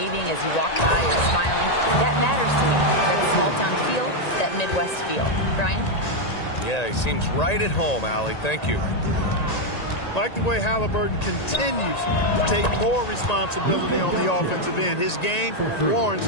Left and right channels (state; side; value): late; right; 1.9 ms